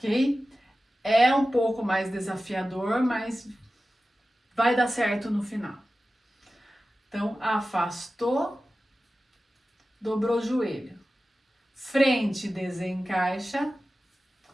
É um pouco mais desafiador, mas vai dar certo no final. Então, afastou, dobrou o joelho. Frente, desencaixa,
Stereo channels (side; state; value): both; normal; correlation 0.95